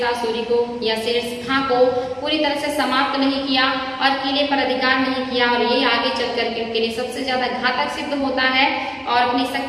सूरी को या शेर खां को पूरी तरह से समाप्त नहीं किया और किले पर अधिकार नहीं किया, और ये आगे चल करके उनके लिए सबसे ज्यादा घातक सिद्ध होता है। और अपनी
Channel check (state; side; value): identical; both; correlation 1.00